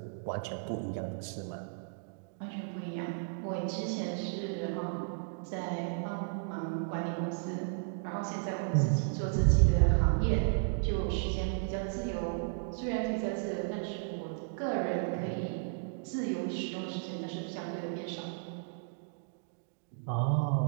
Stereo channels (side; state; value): left; silent; digital silence